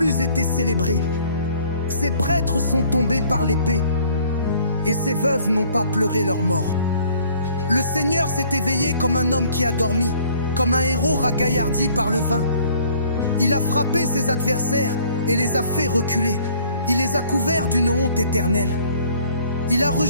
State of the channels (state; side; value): inverted; both; correlation -0.57